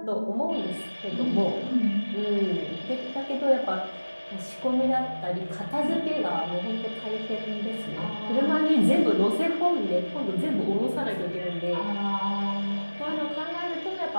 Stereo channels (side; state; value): both; inverted; correlation -1.00